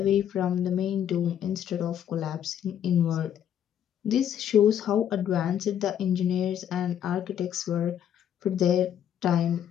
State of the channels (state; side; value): quieter; right; 9.7 dB